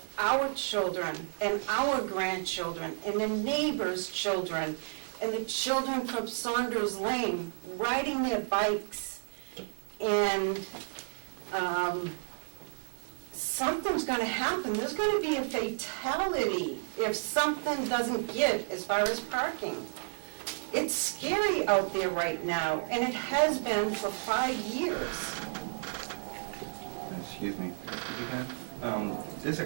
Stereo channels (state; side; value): silent; left; digital silence